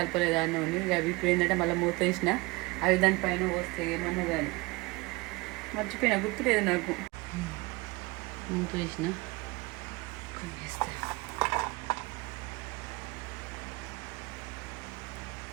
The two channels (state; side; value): quieter; left; 24.2 dB